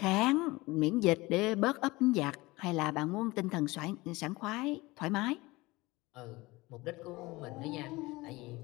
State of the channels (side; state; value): right; quieter; 21.4 dB